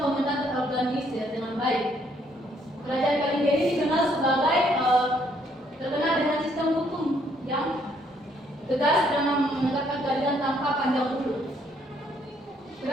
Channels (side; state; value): both; normal; correlation 0.68